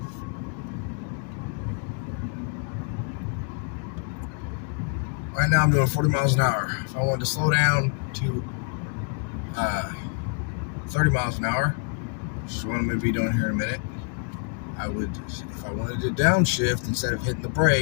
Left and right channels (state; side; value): quieter; right; 39.4 dB